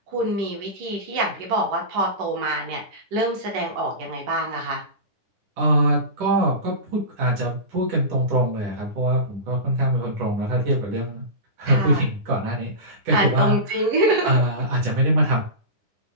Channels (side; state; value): left; late; 10 ms